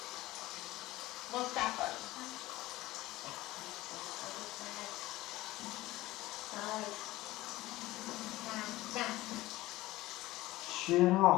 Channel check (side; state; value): right; quieter; 17.9 dB